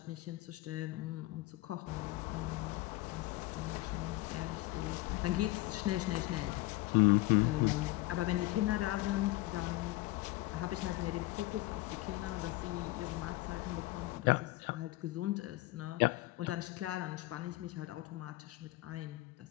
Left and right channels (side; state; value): right; quieter; 19.1 dB